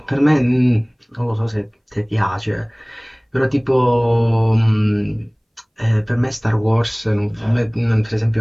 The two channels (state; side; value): identical; both; correlation 1.00